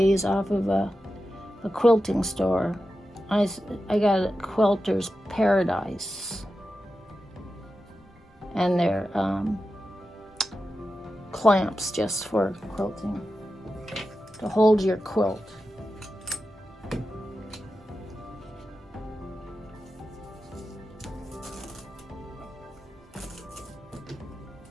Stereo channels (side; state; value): both; normal; correlation 0.91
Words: off of a quilting store. I got a Quilter's Paradise, and they're clamps just for quilting to hold your quilt.